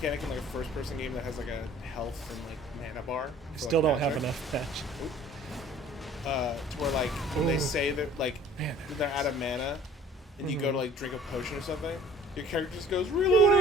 in like a first-person game that has like a health and like mana bar. I still don't have enough match. To where like when they say that like Man, they're out of mana, and you go to like drink a potion or something, your character just goes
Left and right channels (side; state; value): both; normal; correlation 0.51